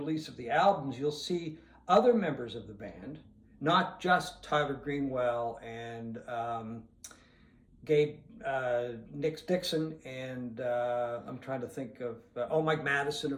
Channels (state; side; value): identical; both; correlation 1.00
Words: of the albums, you'll see other members of the band, not just Tyler Greenwell and Gabe Nick Dixon, and I'm trying to think of, Mike Madison,